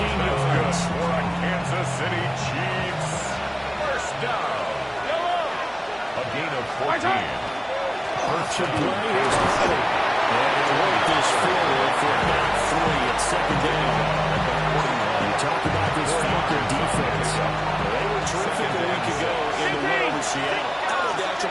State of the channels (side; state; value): both; identical; correlation 1.00